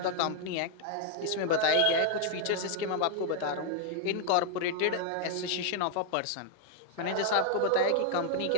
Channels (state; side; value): different; both; correlation 0.00